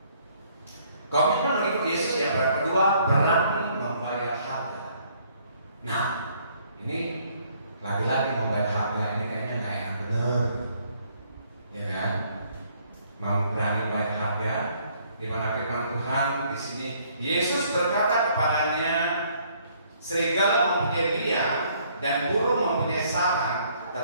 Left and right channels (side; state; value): both; inverted; correlation -0.64